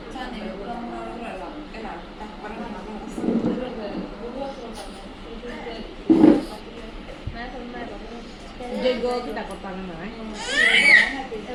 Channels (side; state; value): both; identical; correlation 1.00